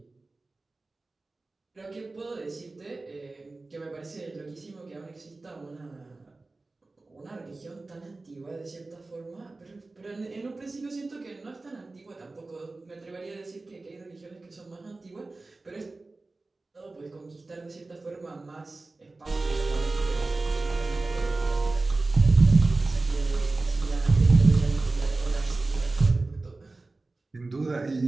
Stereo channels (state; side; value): quieter; left; 3.3 dB